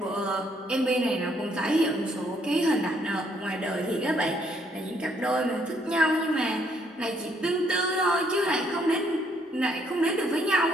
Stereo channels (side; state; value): both; normal; correlation 0.69